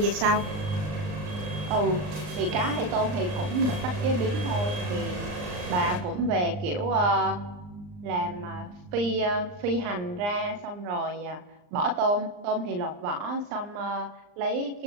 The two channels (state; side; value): late; left; 39 ms